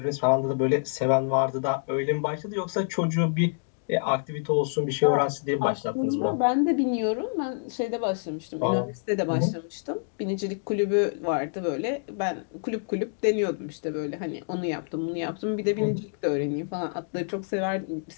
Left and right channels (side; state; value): right; silent; digital silence